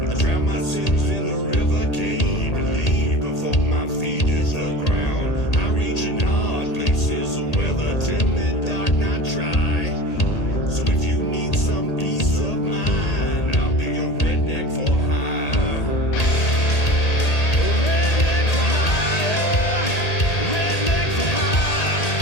I drown my sins in the river, can't believe before my feet hit the ground. I reach in hard places where the timid dark not try. So if you need some peace of mind, I'll be a redneck for hire.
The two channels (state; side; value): late; right; 1.8 ms